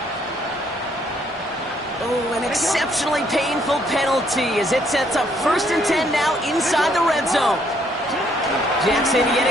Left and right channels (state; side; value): normal; both; correlation 0.68